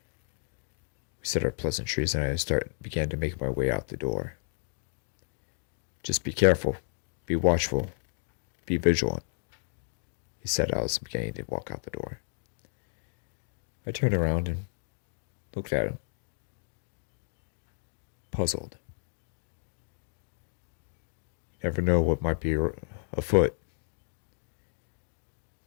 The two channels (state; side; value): silent; right; digital silence